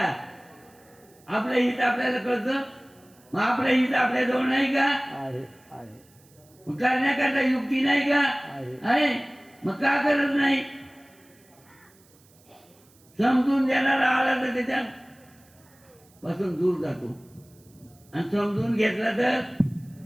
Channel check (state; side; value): noise; right; hiss, 30 dB below the sound